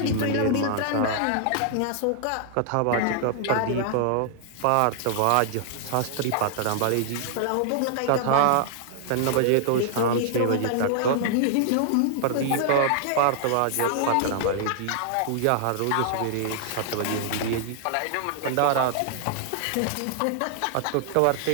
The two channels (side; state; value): both; different; correlation -0.01